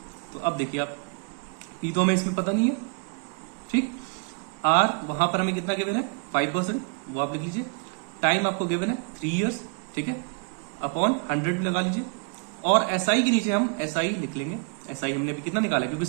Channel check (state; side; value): quieter; left; 34.1 dB